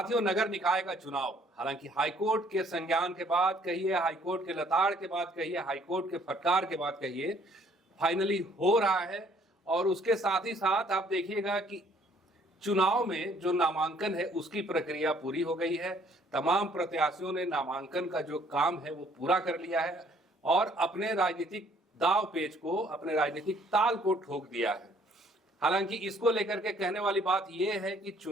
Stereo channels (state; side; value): normal; both; correlation 0.61